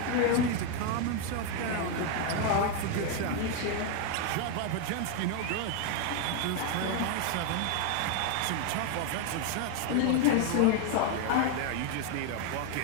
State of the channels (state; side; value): different; both; correlation 0.01